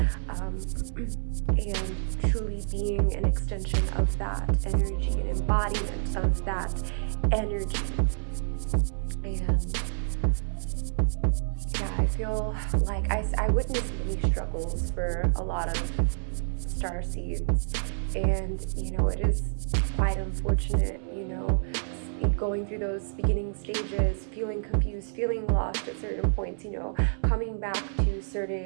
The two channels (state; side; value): silent; left; digital silence